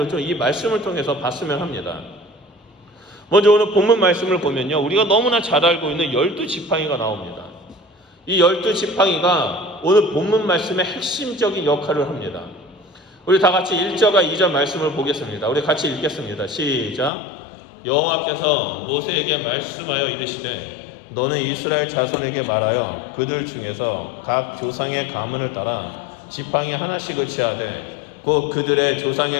좀 이 말씀을 통해서 봤으면 합니다. 먼저 오늘 본문 말씀을 보면요, 우리가 너무나 잘 알고 있는 12지팡이가 나옵니다. 이 12지팡이가 오늘 본문 말씀의 핵심적인 역할을 합니다. 우리 다 같이 1절과 2절 말씀을 보겠습니다. 우리 같이 읽겠습니다. 시작. 여호와께서 모세에게 말씀하여 이르시되 너는 이스라엘 자손에게 말하여 그들 중에서 각 조상의 가문을 따라 지팡이 하나씩을 취하되 곧 그들의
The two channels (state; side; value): drops out; right; at 17.1 s